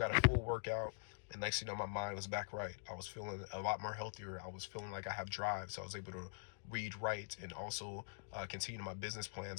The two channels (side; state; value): right; silent; digital silence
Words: a full workout. And next thing you know, my mind was back right. I was feeling a lot more healthier. I was feeling like I have drive. So I was able to read right, and also continue my business